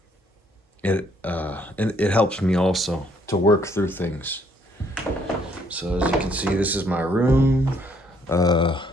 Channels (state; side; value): normal; both; correlation 0.66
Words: it helps me also to work through things. So as you can see, this is my room. Uh,